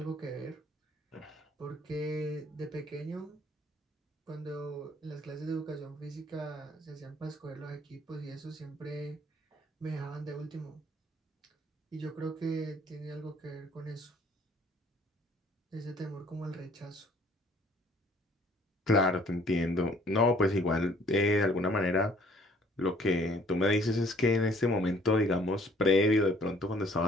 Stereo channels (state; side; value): normal; both; correlation 0.58